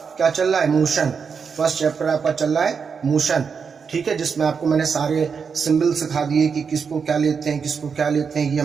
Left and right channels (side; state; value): left; quieter; 6.0 dB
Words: क्या चल रहा है मोशन, फर्स्ट चैप्टर आपका चल रहा है मोशन, ठीक है, जिसमें आपको मैंने सारे सिंबल सिखा दिए कि किसको क्या लेते हैं किसको क्या लेते हैं। ये